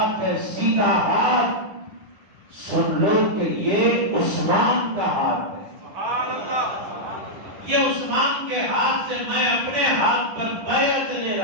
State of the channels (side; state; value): left; late; 9.7 ms